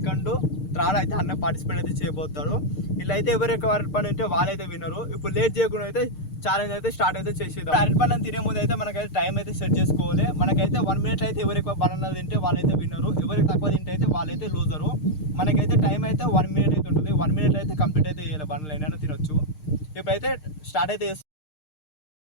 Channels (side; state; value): right; late; 6.6 ms